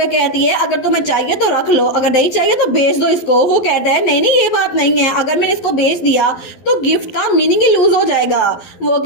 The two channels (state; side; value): late; right; 12 ms